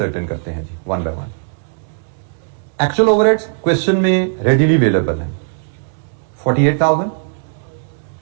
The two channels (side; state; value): left; silent; digital silence